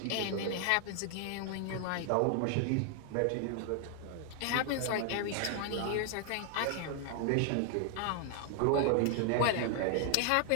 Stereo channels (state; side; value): different; both; correlation 0.00